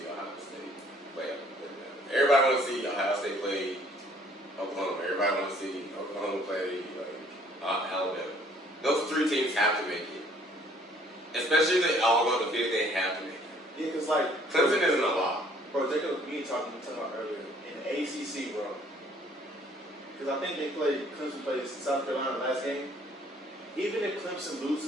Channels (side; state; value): both; normal; correlation 0.60